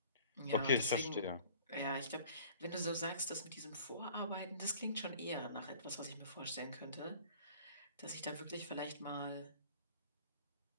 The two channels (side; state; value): both; inverted; correlation -0.49